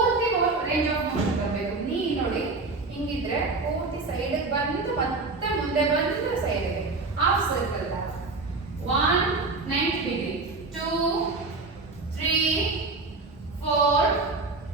ರೇಂಜ್ ಆಫ್ ಮೋಷನ್ ಬರಬೇಕು. ನೀ ನೋಡಿ ಹಿಂಗಿದ್ರೆ ಪೂರ್ತಿ ಸೈಡ್ಗೆ ಬಂದು ಮತ್ತೆ ಮುಂದೆ ಬಂದು ಸೈಡ್ಗೆ ಹಾಫ್ ಸರ್ಕಲ್ 1 90 ಡಿಗ್ರಿ 2 3 4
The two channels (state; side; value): quieter; left; 3.6 dB